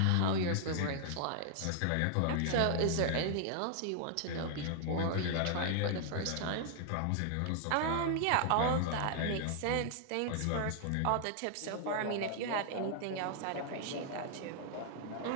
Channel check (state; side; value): different; both; correlation 0.00